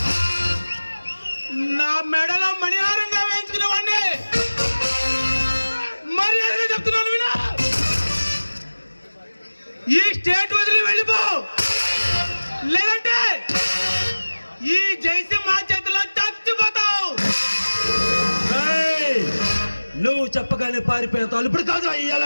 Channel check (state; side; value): inverted; both; correlation -1.00